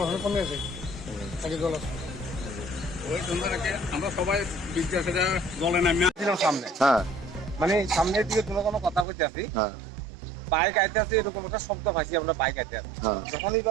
এখন কমে আছে আগে জল আছে ওই সন্ধ্যাটাকে আমরা সবাই বিদ্যাসে জলে নামিয়ে ছিলাম সামনে মানে সামনের দিকে কোনো কথা বলতে আসি বাইক আইতে আছে এরকম একটা শব্দ পাইছি আমরা বাইক আইতে আছি যখন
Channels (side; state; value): left; drops out; at 9.1 s